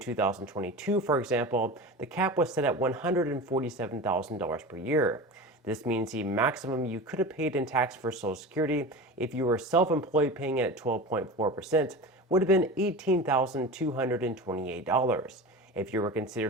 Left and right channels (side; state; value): both; normal; correlation 0.30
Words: for example, the cap was set at $147,000 per year. This means the maximum you could have paid in tax for Social Security if you were self-employed paying it at 12.4% would have been $18,228. If you were